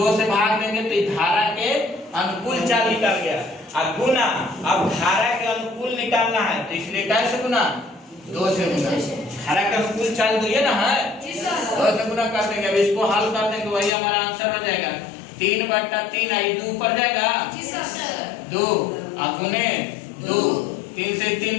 से भाग देंगे तो धारा के अनुकूल चाल निकल गया। अब गुना, अब धारा के अनुकूल निकालना है तो इसलिए कैसे गुना, 2 से गुना। धारा के अनुकूल चाल तो ये ना है, 2 से गुना कर देंगे। अब इसको हल कर देंगे, वही हमारा आंसर हो जाएगा 3/3। आई 2 ऊपर जाएगा 2 और गुने 2, 3 से 3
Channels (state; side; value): drops out; right; at 13.9 s